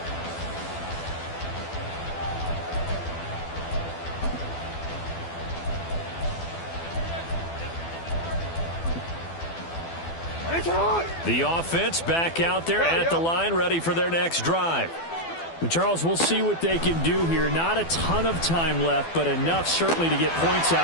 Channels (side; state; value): right; late; 12 ms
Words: The offense back out there at the line, ready for their next drive. And Charles, we'll see what they can do here. Not a ton of time left, but enough certainly to get points out